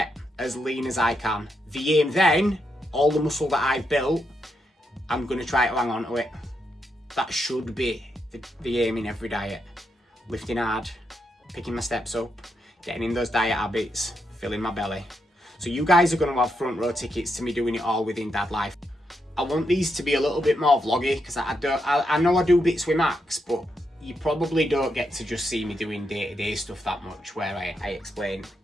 as lean as I can. The aim then, all the muscle that I've built, I'm going to try to hang on to it. That should be the aim in every diet. Lifting hard, picking my steps up, getting in those diet habits, filling my belly. So you guys are going to have front row tickets to me doing it all within Dad Life. I want these to be a little bit more vloggy, because I know I do bits with Max, but you probably don't get to just see me doing day-to-day stuff that much, where I explain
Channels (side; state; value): both; normal; correlation 0.82